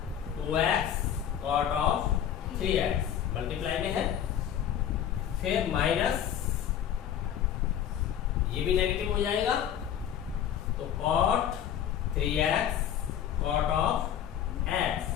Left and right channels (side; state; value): right; quieter; 9.8 dB